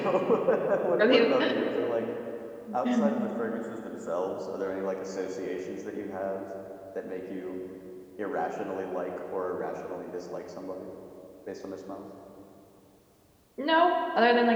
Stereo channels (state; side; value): identical; both; correlation 1.00